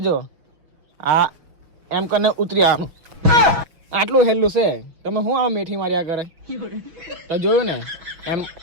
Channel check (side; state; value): left; late; 6.1 ms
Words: જો આ એમ કરીને ઉતરી આવવાનું આટલું હેલું છે તમે શું આ મેઠી માર્યા કરે તો જોયું ને એમ